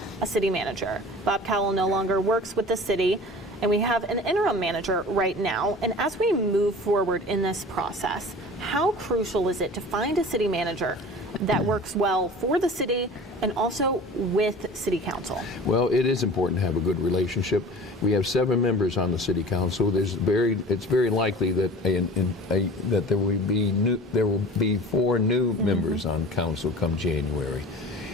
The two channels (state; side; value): normal; both; correlation 0.40